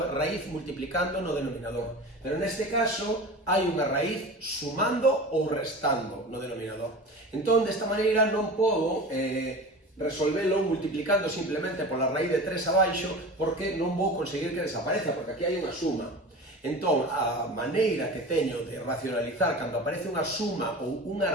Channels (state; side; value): normal; both; correlation 0.33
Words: raíz multiplicando no denominador. Pero neste caso hai unha raíz sumando ou restando no denominador. Entón, desta maneira non podo resolvelo multiplicando simplemente pola raíz de 3 abaixo porque non vou conseguir que desapareza, porque aquí hai unha suma. Entón, a maneira que teño de racionalizar cando aparece unha suma ou